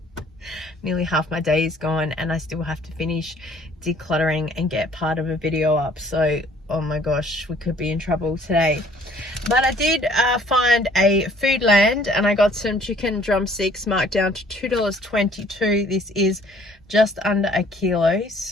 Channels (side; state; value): both; normal; correlation 0.58